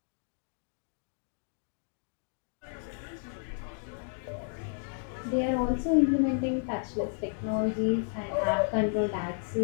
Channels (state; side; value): silent; right; digital silence